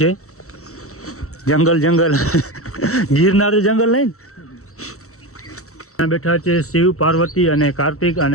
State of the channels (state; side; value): late; right; 0.64 ms